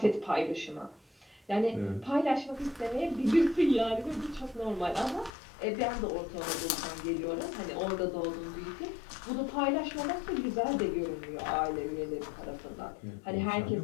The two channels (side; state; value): right; drops out; at 5.3 s